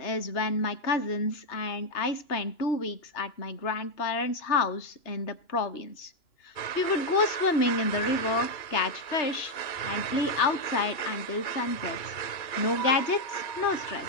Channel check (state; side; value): late; right; 2.9 ms